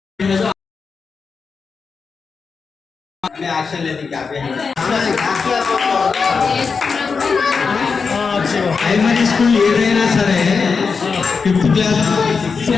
एक्शन लेती क्या प्राइमरी स्कूल ఏదైనా సరే 5th class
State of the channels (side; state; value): right; quieter; 5.2 dB